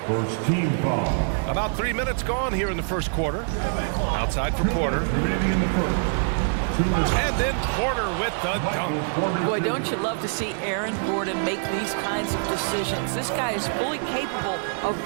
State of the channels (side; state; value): left; silent; 62 dB below the other